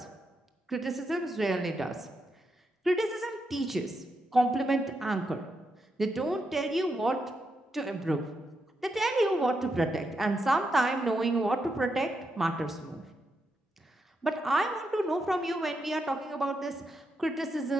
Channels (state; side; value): normal; both; correlation 0.83